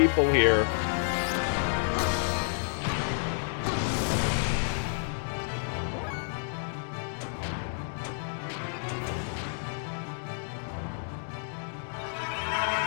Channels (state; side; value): silent; right; digital silence